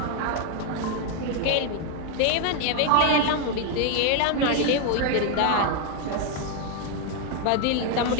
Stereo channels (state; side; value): different; both; correlation 0.01